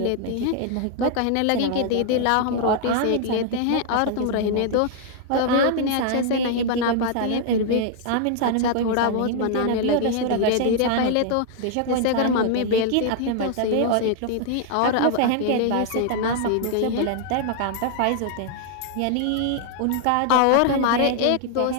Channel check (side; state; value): both; different; correlation 0.00